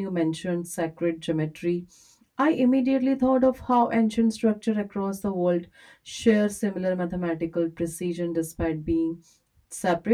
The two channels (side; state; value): both; identical; correlation 1.00